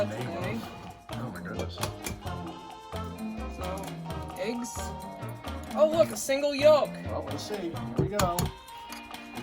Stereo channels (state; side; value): identical; both; correlation 1.00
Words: the name today. of. Oh my goodness. So, eggs. Oh look, a single yolk. Well, let's see. Here we go. We're